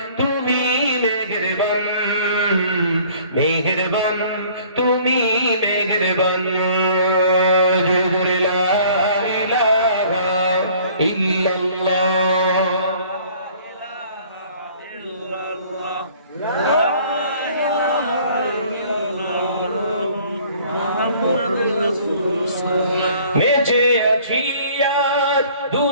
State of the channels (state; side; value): inverted; both; correlation -0.54